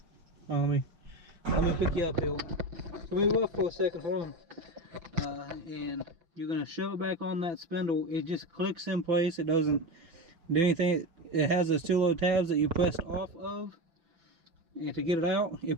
Well, let me pick you up here. So move up for a second, hold on. And you're gonna shove it back on that spindle. It just clicks in place. It doesn't do anything. It has those two little tabs that you pressed off of. And to get it out, it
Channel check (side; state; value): left; late; 5.9 ms